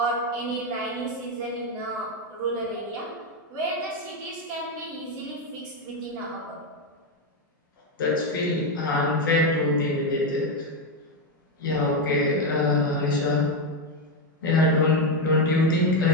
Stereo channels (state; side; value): normal; both; correlation 0.08